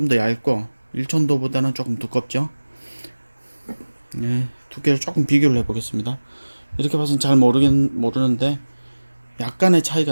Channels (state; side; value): inverted; both; correlation -1.00